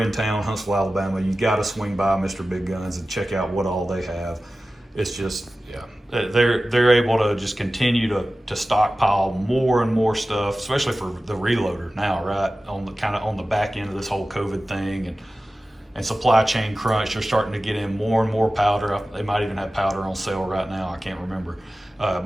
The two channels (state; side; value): normal; both; correlation 0.95